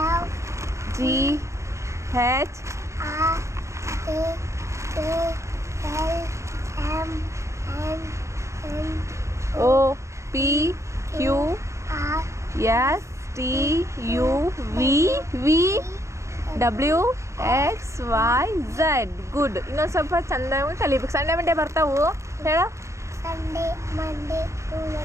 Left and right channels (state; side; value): late; left; 0.14 ms